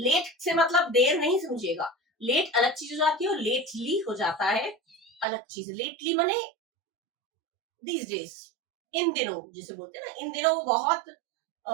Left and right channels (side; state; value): left; drops out; at 5.2 s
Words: से मतलब देर नहीं समझिएगा, लेट अलग चीज हो जाती है और लेटली हो जाता है अलग चीज। लेटली मने दीज डेज, इन दिनों जिसे बोलते हैं ना, इन दिनों वो बहुत